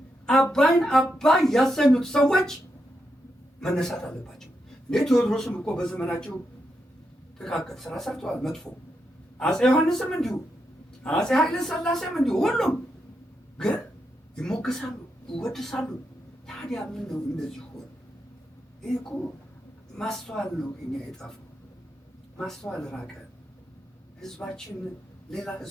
አባይን አባይ ያሰኙት ሰዎች መነሳት አለባቸው። እንዴ ቴዎድሮስም እኮ በዘመናቸው ጥቃቅን ስራ ሰርተዋል፣ መጥፎ። አፄ ዮሐንስም እንዲሁ፣ አፄ ኃይለ ሥላሴም እንዲሁ። ሁሉም ግን ይሞገሳሉ፣ ይወድሳሉ። ታዲያ ምን ነው እንደዚህ ሆነ? ይህ እኮ ማስተዋል ነው እኛ የጣፈው። ማስተዋል ራቀ። ህዝባችን ሌላ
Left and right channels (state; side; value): normal; both; correlation 0.84